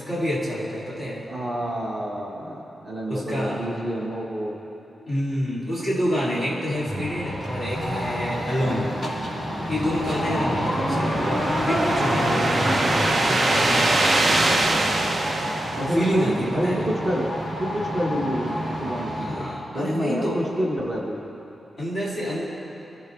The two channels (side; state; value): both; normal; correlation 0.89